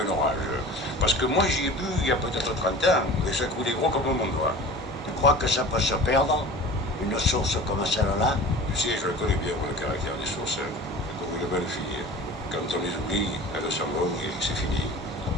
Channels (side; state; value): both; normal; correlation 0.39